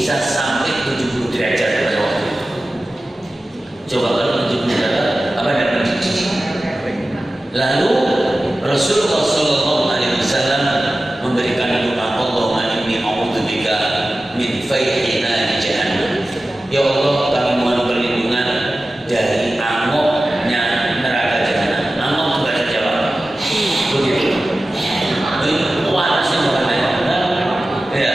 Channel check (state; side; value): normal; both; correlation 0.95